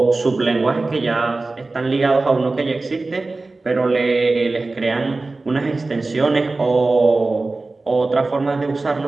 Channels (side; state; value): left; quieter; 3.4 dB